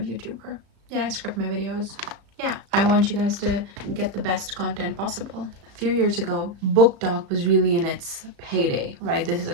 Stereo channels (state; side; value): late; left; 35 ms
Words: Yeah, I script my videos. Yeah, I want you guys to get the best content possible. A few years ago, book talk was really in its heyday, right? This is a